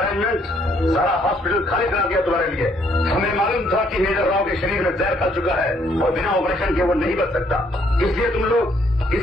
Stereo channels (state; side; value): normal; both; correlation 0.68